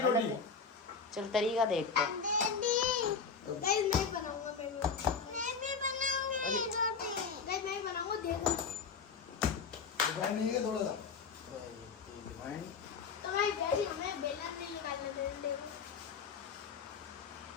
रोटी। चल तरीका देखते हैं। डैडी गाइस मैं बनाऊंगा। मैं भी बनाऊंगी रोटी। गाइस मैं बनाऊंगा, देखो। रिफाइंड नहीं है थोड़ा सा रिफाइंड। तो गाइस डैडी हमें बेलना नहीं निकालना दे।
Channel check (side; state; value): right; quieter; 5.6 dB